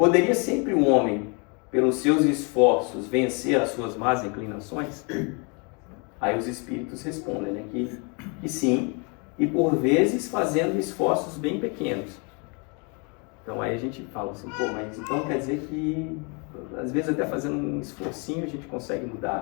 sempre um homem, pelos seus esforços, vencer as suas más inclinações? Aí os espíritos respondem, né? Que sim, e por vezes fazendo esforços bem pequenos. Então aí a gente fala assim, pô, mas então quer dizer que às vezes até fazendo um esforcinho a gente consegue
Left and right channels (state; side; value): quieter; right; 33.4 dB